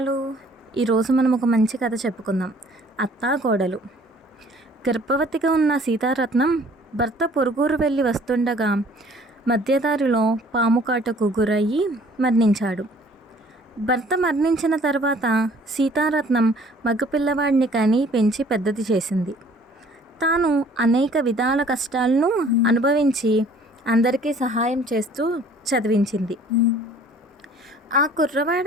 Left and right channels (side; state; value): both; normal; correlation 0.54